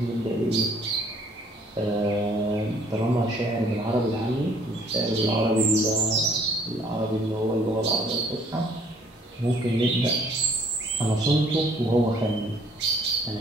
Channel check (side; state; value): both; normal; correlation 0.60